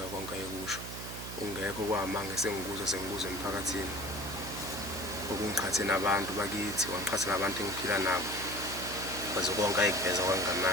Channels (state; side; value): noise; right; hum, 9 dB below the sound